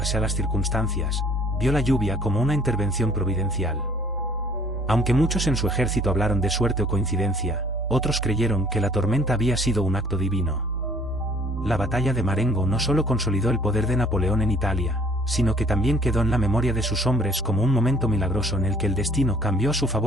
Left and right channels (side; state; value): both; normal; correlation 0.57